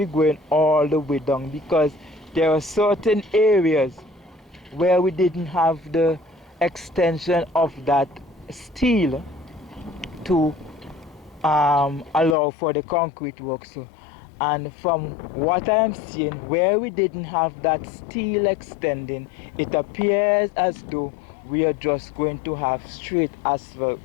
going all the way down, because there are certain areas where we didn't have the extension of that steel to allow for the concrete work. So, and from what I am seeing, where we didn't have that steel extending, it appears as though we are just going to have straight asphalt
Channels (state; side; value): drops out; right; at 12.4 s